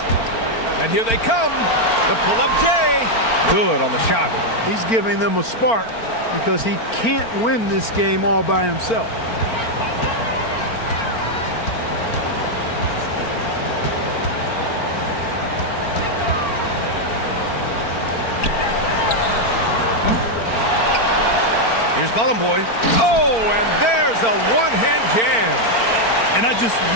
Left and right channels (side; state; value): right; late; 4.4 ms